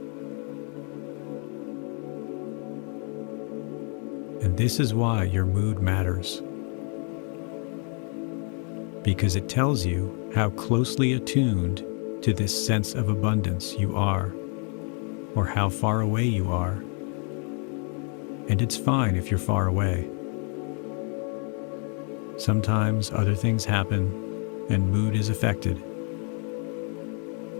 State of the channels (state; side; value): quieter; right; 39.8 dB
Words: And this is why your mood matters, because it tells you how closely attuned to this sense of abundance you are, or how far away you are. And it's fine if you're far away. Sometimes other things happen and mood is affected,